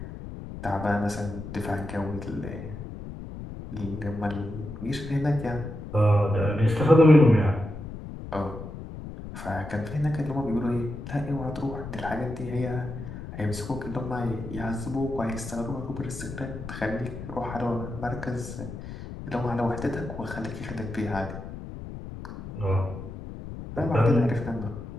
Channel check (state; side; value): noise; left; rumble, 10 dB below the sound